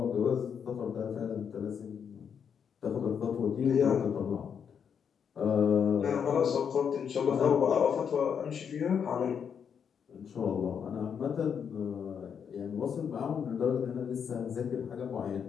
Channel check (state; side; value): quieter; right; 7.3 dB